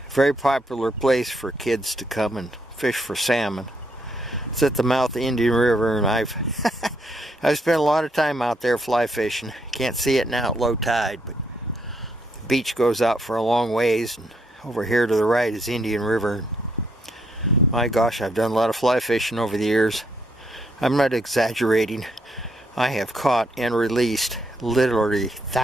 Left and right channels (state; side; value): normal; both; correlation 0.74